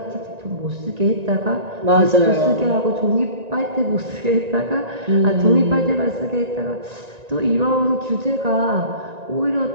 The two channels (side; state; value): left; late; 1.9 ms